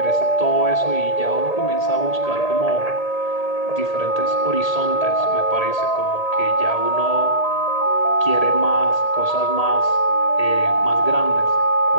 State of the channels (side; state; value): right; late; 1.8 ms